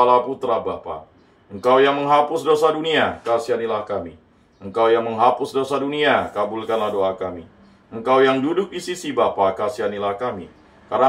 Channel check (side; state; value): both; identical; correlation 1.00